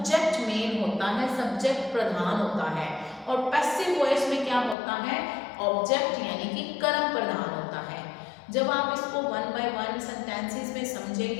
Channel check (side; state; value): right; drops out; at 4.8 s